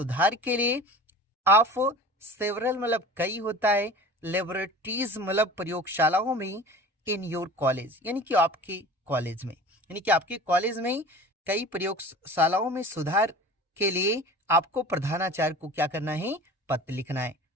के लिए, ऑफ सेवरल मतलब कई होता है, लेबोरेटरीज मतलब प्रयोगशालाओं में, इन योर कॉलेज यानी कि आपके कॉलेज में, यानी कि आपके कॉलेज में कई प्रयोगशालाओं में सुधार के लिए आपको प्रधानाचार्य को क्या करना है, पत्र लिखना है।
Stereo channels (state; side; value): normal; both; correlation 0.40